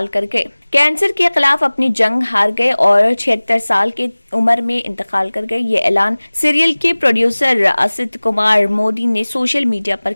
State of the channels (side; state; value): both; inverted; correlation -1.00